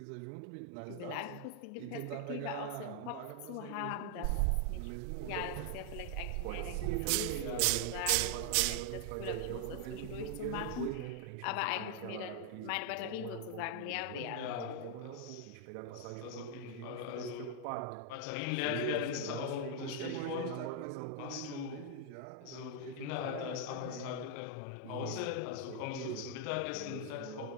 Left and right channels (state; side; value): different; both; correlation 0.00